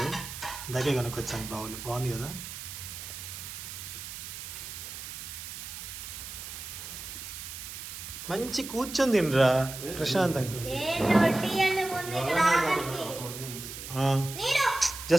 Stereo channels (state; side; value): noise; right; hiss, 9 dB below the sound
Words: ఇందాకే కనుకొచ్చాను, బాగుంది కదా. మంచి కూర్చొని తినరా ప్రశాంతంగా.